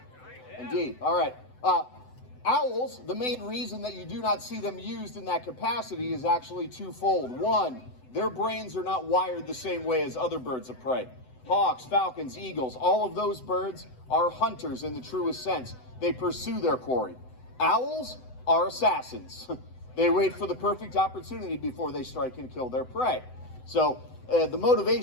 Indeed. All right. Owls, the main reason that you do not see them used in that capacity is actually twofold. One, their brains are not wired the same way as other birds of prey. Hawks, falcons, eagles, all of those birds are hunters in the truest sense. They pursue their quarry. Owls are assassins. They wait for the perfect opportunity before they strike and kill their prey. So the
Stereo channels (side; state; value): right; late; 7.9 ms